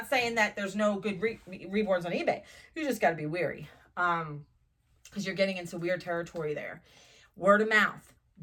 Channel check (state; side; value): identical; both; correlation 1.00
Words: saying that there's no good reborns on eBay. You just got to be wary because you're getting into weird territory there. Word of mouth.